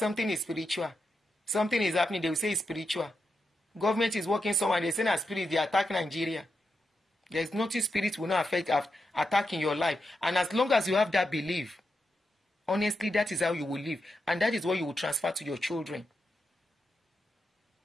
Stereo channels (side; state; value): both; normal; correlation 0.86